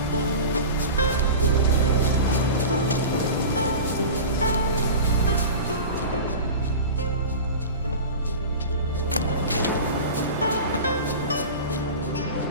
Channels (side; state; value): both; inverted; correlation -0.31